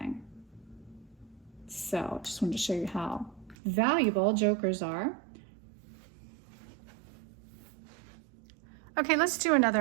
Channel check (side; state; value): left; drops out; at 3.6 s